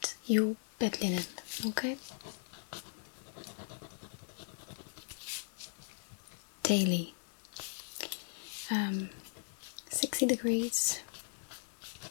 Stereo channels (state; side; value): silent; right; digital silence